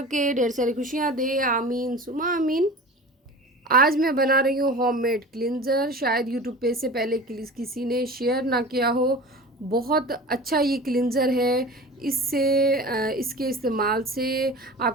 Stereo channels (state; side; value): normal; both; correlation 0.36